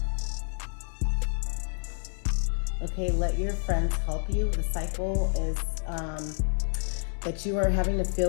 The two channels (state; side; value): silent; right; digital silence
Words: Okay, let your friends help you. The cycle is that you are having to feel